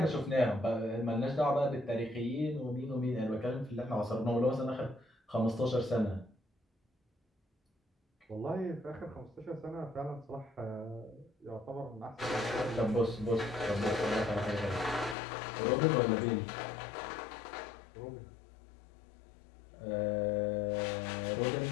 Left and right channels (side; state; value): right; drops out; at 15.2 s